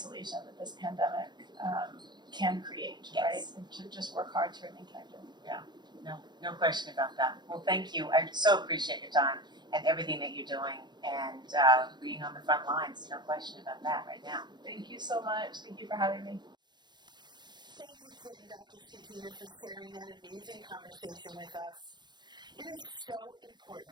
that this pandemic can create, right? And to just work hard to remain connected. No question about that. Well, thank you. I so appreciate your time and everything that you're doing, and being on the front lines. No question about that right now. Thank you so much. Thank you for having me. Thank you, Kit and Dr. Schetina, for sharing that amazing conversation with us. It is so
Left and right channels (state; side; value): late; left; 0.21 ms